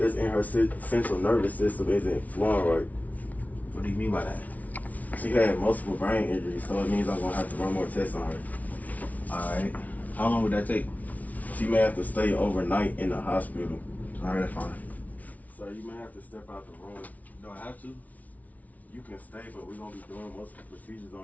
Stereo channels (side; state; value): right; late; 0.072 ms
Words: in her central nervous system isn't flowing right. What do you mean by that? She had multiple brain injuries, so it means I'm gonna have to run more tests on her. Alright. How long would that take? She may have to stay overnight in the hospital. Alright, that's fine. So you may have to step out the room. Do I have to? You can stay, but we're gonna be doing most of the procedures